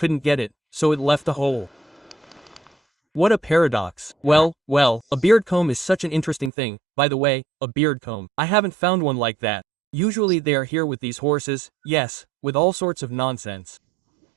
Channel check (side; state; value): left; drops out; at 6.5 s